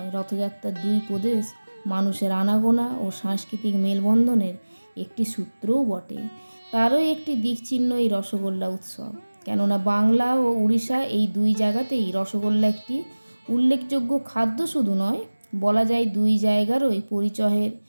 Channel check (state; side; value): inverted; both; correlation -1.00